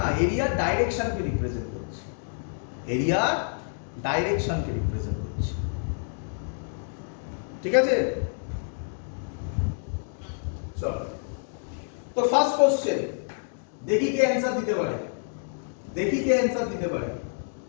এরিয়ার ডাইরেকশনকে রিপ্রেজেন্ট করছে, এরিয়ার ডাইরেকশনকে রিপ্রেজেন্ট করছে, ঠিক আছে? চলো তো ফার্স্ট কোশ্চেন, দেখি কে অ্যানসার দিতে পারে,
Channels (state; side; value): silent; right; digital silence